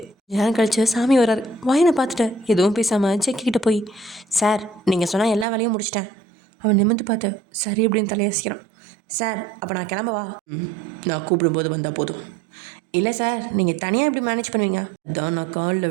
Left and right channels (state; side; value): drops out; left; at 5.5 s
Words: நேரம் கழிச்சு சாமி வர்றாரு. வயனை பார்த்துட்டு எதுவும் பேசாமல் செக்கிக்கிட்ட போய், சார் நீங்கள் சொன்னால் எல்லா வேலையும் முடிச்சிட்டேன். அவன் நிமிர்ந்து பார்த்து சரி அப்படின்னு தலையாசிக்கிறான். சார் அப்போ நான் கிளம்பவா? நான் கூப்பிடும்போது வந்தால் போதும். இல்லை சார், நீங்கள் தனியாக எப்படி மேனேஜ் பண்ணுவீங்க? அதான் நான் காலில்